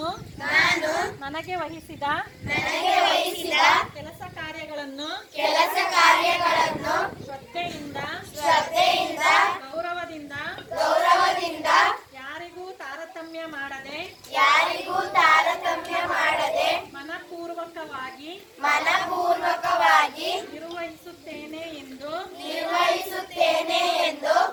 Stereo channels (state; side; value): identical; both; correlation 1.00